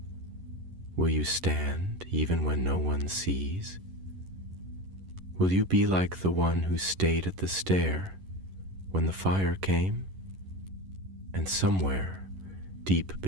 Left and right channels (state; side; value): late; left; 11 ms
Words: "Will you stand even when no one sees? Will you be like the one who stayed at the stair when the fire came?" And somewhere, deep